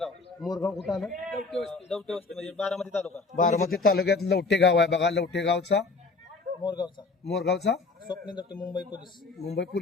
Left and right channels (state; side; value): quieter; right; 4.0 dB